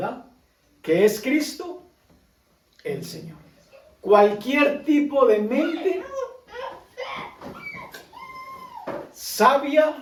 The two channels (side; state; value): both; identical; correlation 1.00